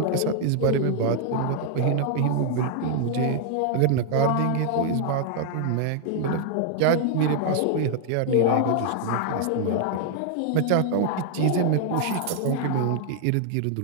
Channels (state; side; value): different; both; correlation 0.00